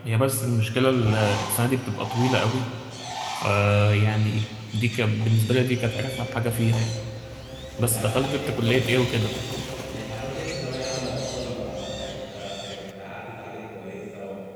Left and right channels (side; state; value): both; identical; correlation 1.00